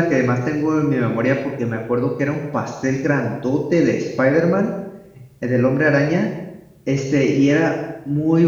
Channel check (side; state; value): both; identical; correlation 1.00